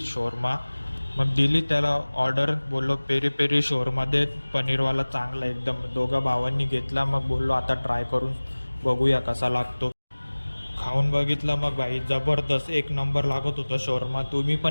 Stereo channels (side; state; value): both; inverted; correlation -1.00